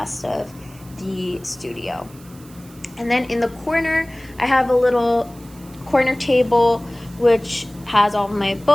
of the studio. And then in the corner, I have a little corner table which has all my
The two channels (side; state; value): right; noise; hiss, 24 dB below the sound